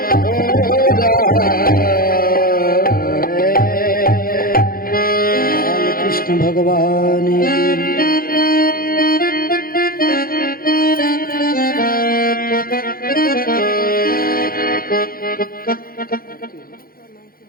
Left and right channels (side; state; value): right; late; 0.42 ms